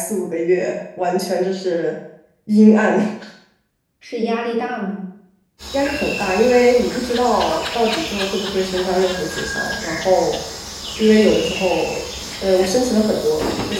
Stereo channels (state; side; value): identical; both; correlation 1.00